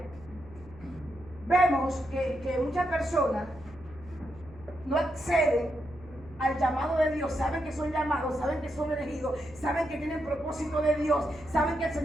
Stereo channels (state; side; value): noise; right; hum, 21 dB below the sound